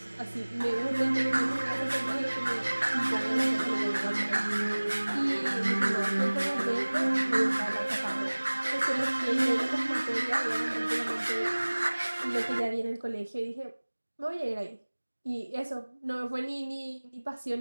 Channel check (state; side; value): inverted; both; correlation -1.00